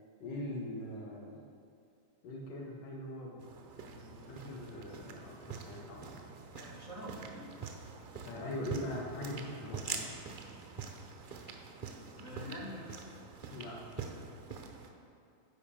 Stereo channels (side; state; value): right; late; 3.6 ms